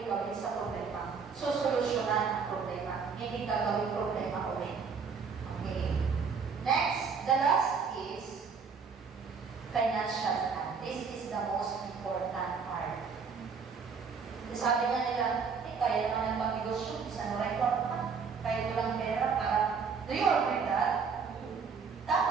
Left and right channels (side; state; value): left; quieter; 5.6 dB